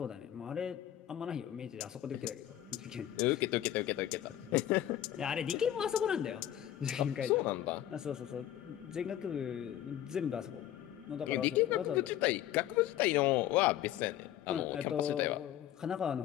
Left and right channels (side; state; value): right; quieter; 12.1 dB